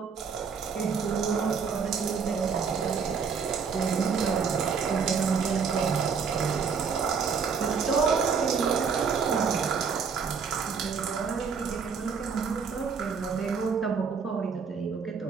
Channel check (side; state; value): left; quieter; 5.9 dB